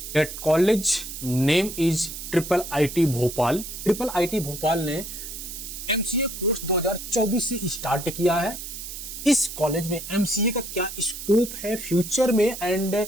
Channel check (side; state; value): right; noise; hiss, 9 dB below the sound